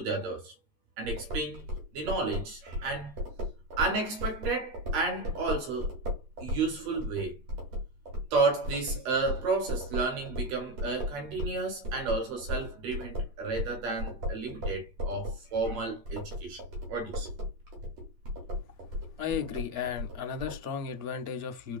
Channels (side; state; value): left; late; 8.5 ms